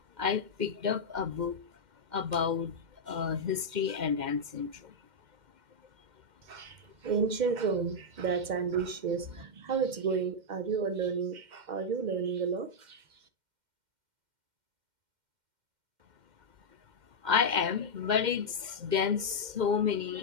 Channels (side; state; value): left; late; 2.1 ms